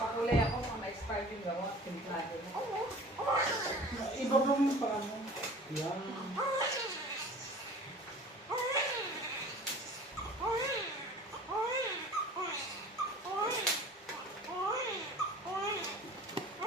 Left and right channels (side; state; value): both; normal; correlation 0.43